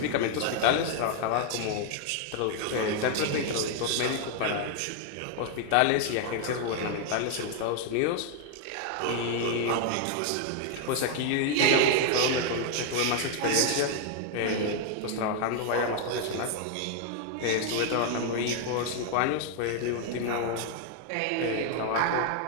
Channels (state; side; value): different; both; correlation 0.00